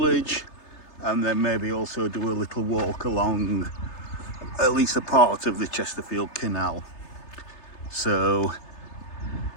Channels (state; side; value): late; right; 3.3 ms